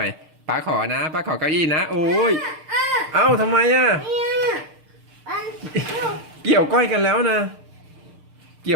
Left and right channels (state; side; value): late; left; 6.6 ms